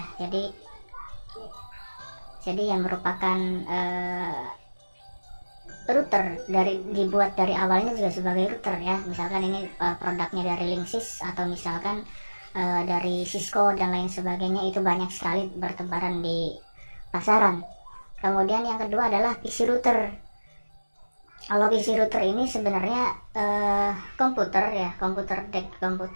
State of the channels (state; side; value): inverted; both; correlation -1.00